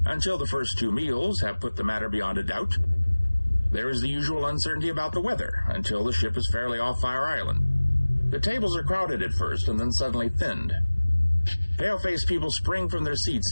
until the first 2 meals have put the matter beyond a doubt. There is the usual uncertainty about the weather, until the ship is fairly off Fire Island. The tables are crowded at first and then suddenly thinned. Pale-faced people spring from their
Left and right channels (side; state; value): both; inverted; correlation -1.00